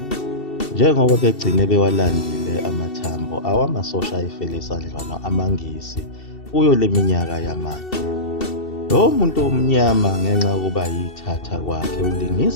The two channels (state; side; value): late; right; 2.7 ms